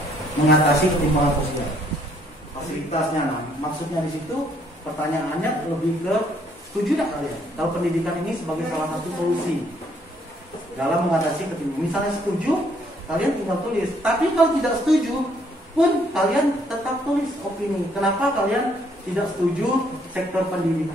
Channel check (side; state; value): both; normal; correlation 0.67